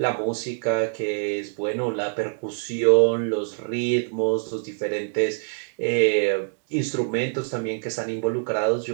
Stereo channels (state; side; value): silent; left; 62 dB below the other